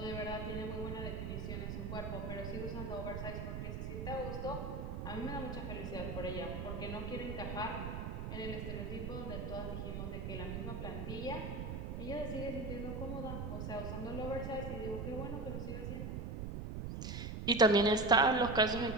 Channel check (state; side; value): noise; right; rumble, 4 dB below the sound